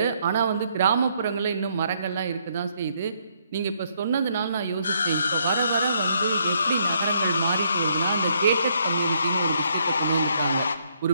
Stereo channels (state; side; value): inverted; both; correlation -0.71